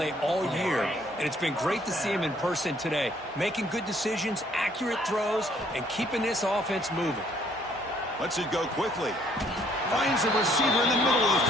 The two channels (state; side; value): normal; both; correlation 0.64